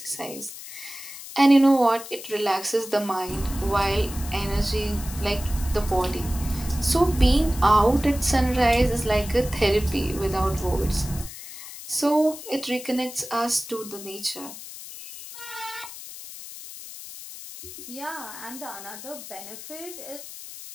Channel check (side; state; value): left; noise; hiss, 13 dB below the sound